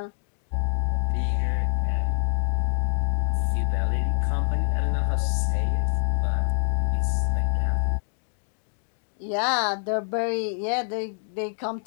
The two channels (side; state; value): right; silent; digital silence